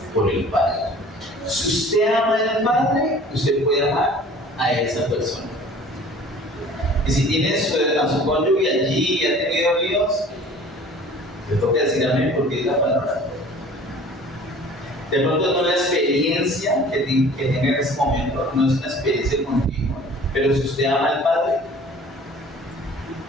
por el Padre. Si usted ama al Padre, usted puede amar a esa persona. Y si tiene a su cónyuge allí y ha tenido líos, le toca decir amén porque es la palabra. De pronto no la experiencia que tenga en ese momento, no es una experiencia continua, pero si usted ama al Padre,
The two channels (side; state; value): both; normal; correlation 0.47